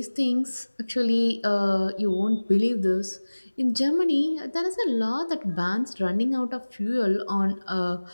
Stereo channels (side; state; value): both; inverted; correlation -1.00